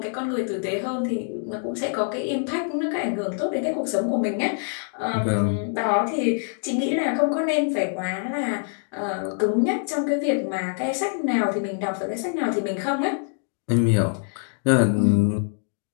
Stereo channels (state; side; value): silent; right; 62 dB below the other